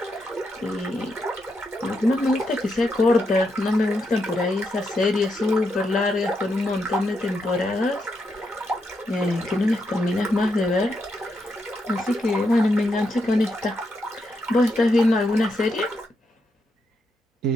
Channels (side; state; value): both; normal; correlation 0.82